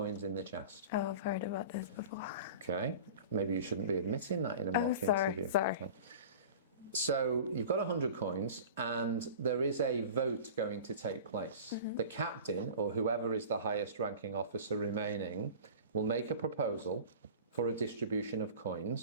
in the chest. Oh, I've heard about this before. Okay, maybe you shouldn't be admitting that in a mock interview. Sorry. Okay. So you've got 100 coins, and there is a vote going to take place. The captain, or whoever is the highest ranking officer remaining, will make a proposal for a distribution of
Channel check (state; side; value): inverted; both; correlation -0.38